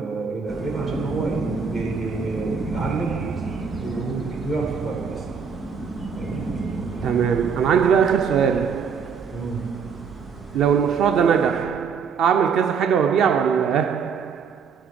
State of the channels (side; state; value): left; quieter; 6.2 dB